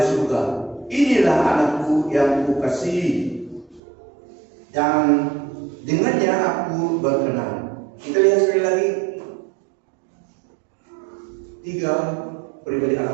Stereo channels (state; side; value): drops out; left; at 3.8 s